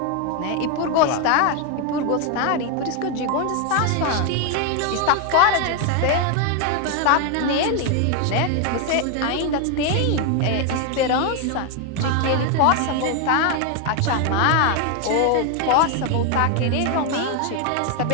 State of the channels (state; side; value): different; both; correlation 0.01